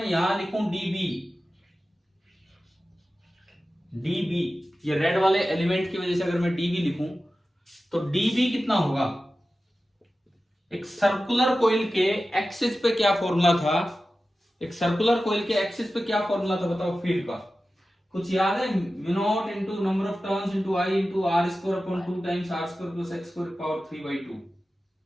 यहां लिखूं db, ये रेड वाले एलिमेंट की वजह से अगर मैं db लिखूं तो db कितना होगा? एक सर्कुलर कोइल के एक्सिस पे क्या फॉर्मूला था? एक सर्कुलर कोइल के एक्सिस पे क्या फॉर्मूला था बताओ फील्ड का? कुछ याद है? Mu not into number of turns into I into r square upon 2 times are square plus x square power 3/2।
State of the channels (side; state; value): both; normal; correlation 0.94